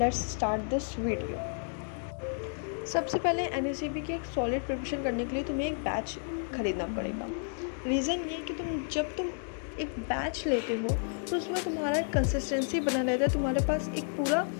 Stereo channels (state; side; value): silent; right; 57 dB below the other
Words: let's start this video. सबसे पहले NSCB की एक सॉलिड प्रिपरेशन करने के लिए तुम्हें एक बैच ख़रीदना पड़ेगा. रीज़न ये कि जब तुम एक बैच लेते हो तो उसमें तुम्हारा कंसिस्टेंसी बना रहता है. तुम्हारे पास एक